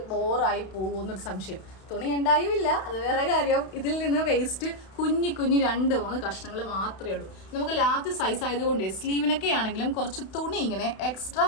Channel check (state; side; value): late; right; 32 ms